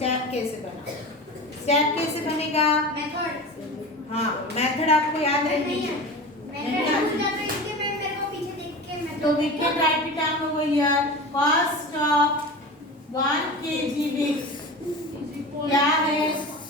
कैसे बनाऊं। स्टेप कैसे बनेगा? मेथड। हाँ, मेथड आपको याद रखनी है। तो we can write it down over here. Cost of 1 kg wheat क्या है?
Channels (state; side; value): normal; both; correlation 0.31